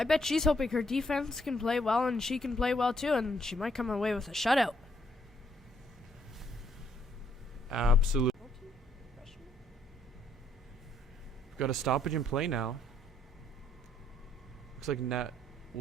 bet she's hoping her defense can play well, and she can play well too, and she might come away with a shutout. Absolutely. We've got a stoppage in play now. Looks like net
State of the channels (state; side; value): normal; both; correlation 0.70